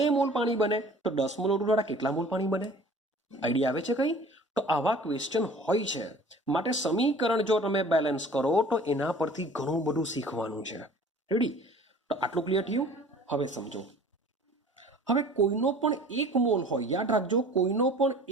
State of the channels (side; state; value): both; normal; correlation 0.47